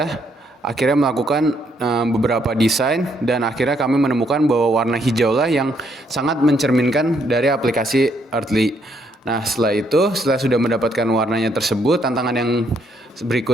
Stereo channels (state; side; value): normal; both; correlation 0.72